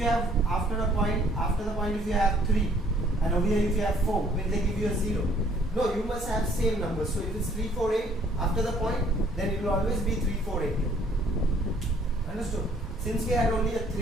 after the point if you have 3 and over here if you have 4, will they give you a 0? No, you must have same numbers. So if it's 348 after the point, then it will always be 348. Understood? Since we had only a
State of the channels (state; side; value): normal; both; correlation 0.61